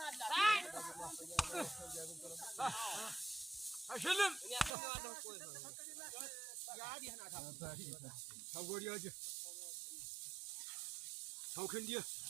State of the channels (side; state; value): left; drops out; at 4.7 s